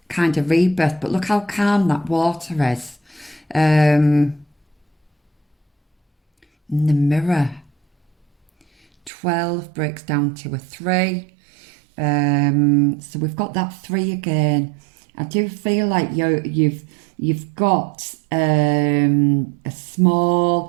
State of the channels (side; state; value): left; drops out; at 9.1 s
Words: kind of rebirth, but look how calm that water is. In the mirror, 12 breaks down to a 3. So we've got that 3 again. I do feel like you've got we've